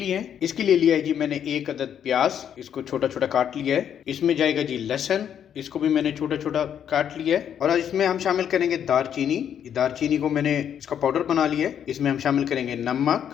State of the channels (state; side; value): quieter; right; 9.0 dB